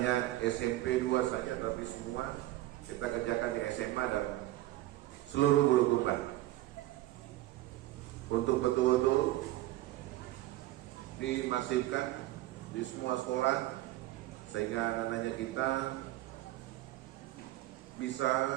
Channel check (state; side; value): quieter; left; 16.2 dB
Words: SMP 2 saja, tapi semua kita kerjakan di SMA dan seluruh Bulukumba untuk betul-betul dimasifkan di semua sekolah sehingga anak-anaknya kita bisa